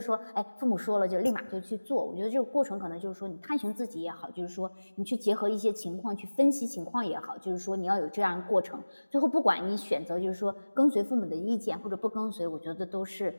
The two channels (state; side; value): inverted; both; correlation -1.00